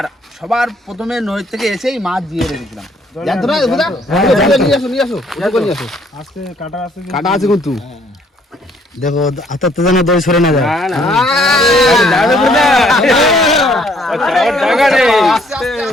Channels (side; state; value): both; normal; correlation 0.64